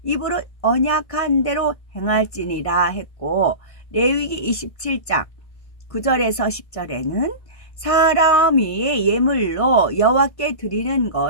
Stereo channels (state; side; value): late; right; 1.5 ms